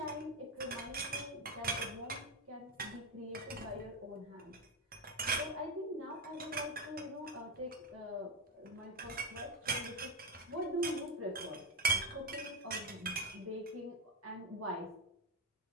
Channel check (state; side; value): normal; both; correlation 0.10